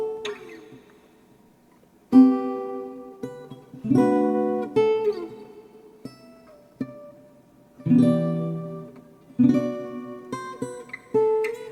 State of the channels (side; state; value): both; identical; correlation 1.00